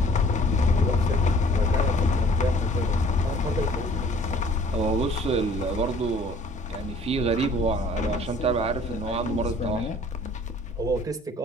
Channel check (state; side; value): normal; both; correlation 0.54